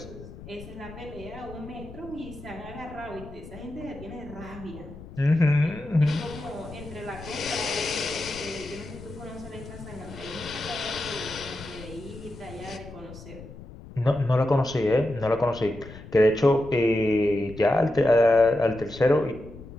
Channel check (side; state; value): left; noise; rumble, 15 dB below the sound